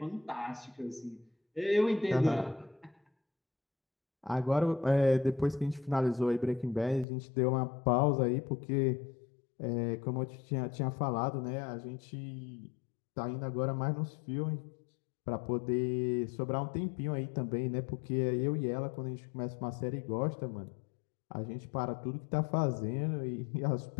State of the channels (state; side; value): drops out; right; at 7.1 s